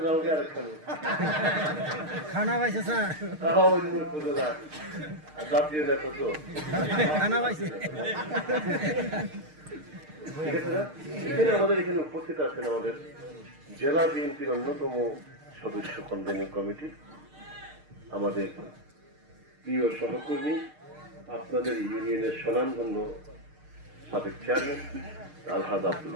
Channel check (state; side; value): late; left; 6.5 ms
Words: যাও গে আরেকখানে খানা পাইছে স্যার, তাও উপজেলা জাতীয় নেতা তো খানা পাইছে। ঠিক আছে না? এখানে আমাদের এখানে উপস্থিত আছেন আমাদের জেলা বিএনপির অন্যতম সদস্য কনভেনিং কমিটি, আমাদের প্রিয় সহকর্মী, আপনাদের ইউনিয়নের স্বনামধন্য সাবেক চেয়ারম্যান আলহাজ আব্দুল